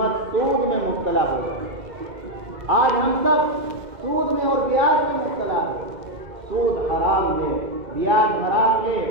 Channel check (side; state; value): left; late; 2.1 ms